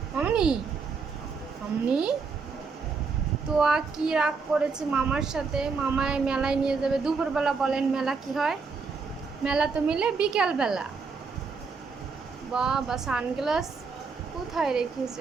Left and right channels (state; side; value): quieter; left; 4.9 dB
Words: মামনি, মামনি তো কি রাগ করেছে মামার সাথে? মামায় মেলায় নিয়ে যাবে দুপুরবেলা। বলেন মেলা কি হয়? মেলা তো মিলে বিকেলবেলা। বাবা সানগ্লাস কোথায়